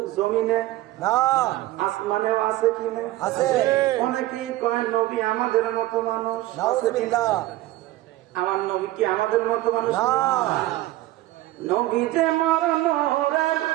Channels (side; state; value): left; quieter; 16.6 dB